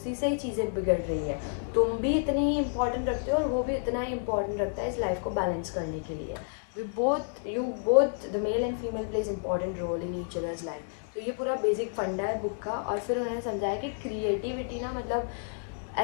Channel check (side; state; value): right; silent; digital silence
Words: से ही चीज़ें बिगड़ रही है। तुम भी इतनी ही इंपॉर्टेंट रखते हो और वो भी इतना ही इंपॉर्टेंट रखता है इस लाइफ को बैलेंस करने के लिए। you both the male and female plays important role in each other's life। तो ये पूरा बेसिक फंडा है बुक का। और फिर उन्होंने समझाया कि क्रिएटिविटी ना मतलब